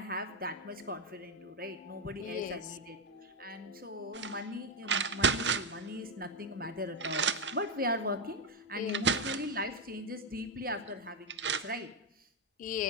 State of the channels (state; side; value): normal; both; correlation 0.05